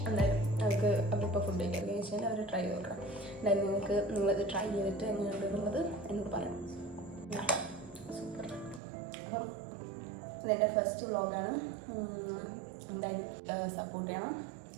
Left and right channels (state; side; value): drops out; left; at 8.8 s